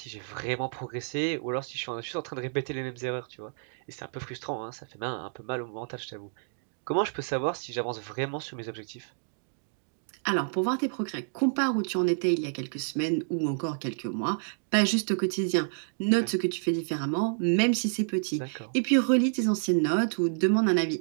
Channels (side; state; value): left; silent; digital silence